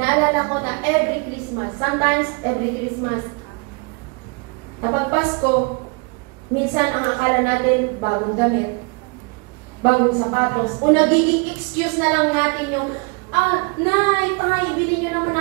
ko na every Christmas, sometimes every Christmas, kapag Pasko, minsan ang akala natin, bagong damit, bagong sapatos, o nagiging excuse na lang natin yung, Nay, tay, bilhin nyo naman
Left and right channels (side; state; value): left; quieter; 33.1 dB